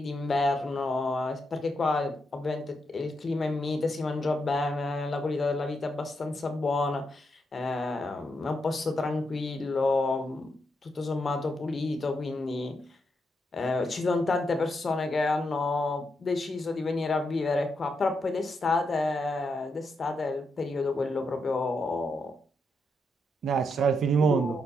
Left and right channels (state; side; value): normal; both; correlation 0.82